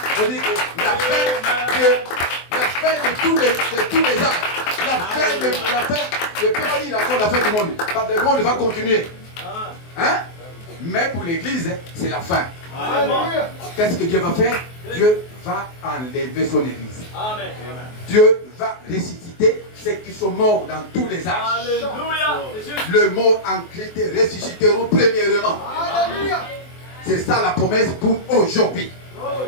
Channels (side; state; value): right; late; 24 ms